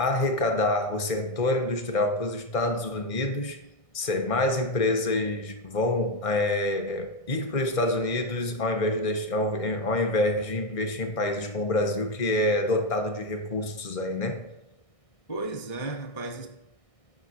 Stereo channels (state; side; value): late; right; 1.6 ms